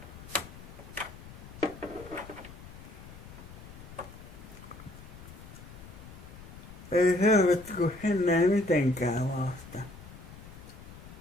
Ei helvetti, kun ennen ei mitenkään vasta.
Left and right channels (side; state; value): left; noise; rumble, 16 dB below the sound